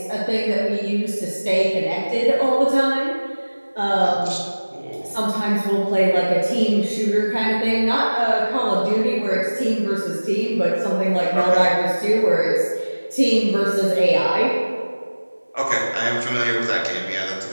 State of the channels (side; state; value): both; inverted; correlation -1.00